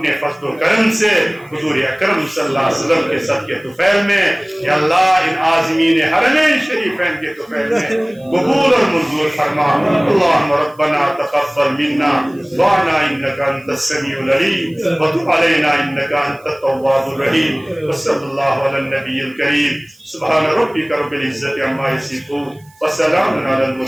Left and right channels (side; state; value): right; noise; hiss, 30 dB below the sound